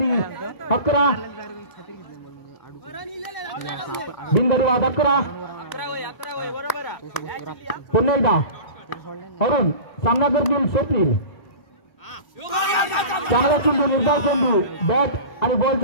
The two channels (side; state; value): right; late; 2.0 ms